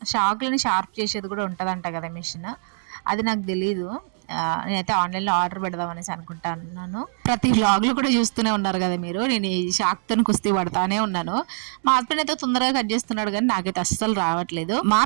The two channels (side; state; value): left; silent; digital silence